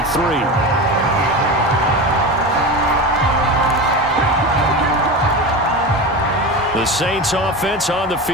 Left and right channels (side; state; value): both; normal; correlation 0.25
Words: The Saints offense on the